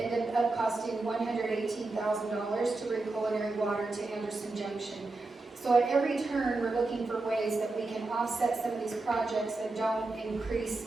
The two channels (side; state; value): left; quieter; 3.3 dB